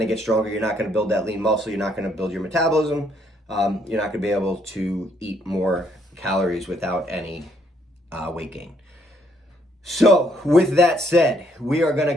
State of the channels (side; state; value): both; normal; correlation 0.69